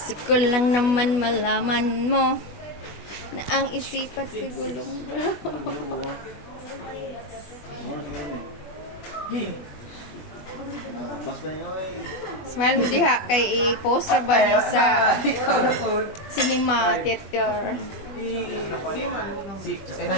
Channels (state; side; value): late; right; 20 ms